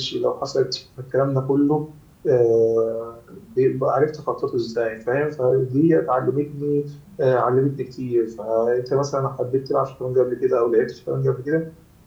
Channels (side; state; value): both; identical; correlation 1.00